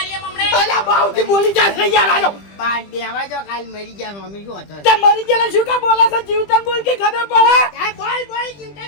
હમણે. અલ્યા બાઉથી બોલી જાય યાર આજો. બાર દેવા જો કાલ મરી ગયા મમ્મી શું હતો? તે મરી ગયેલા શું કા બોલે છે જીવતન બોલ કે ખબર પડે. બોલ બોલ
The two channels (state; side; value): late; right; 20 ms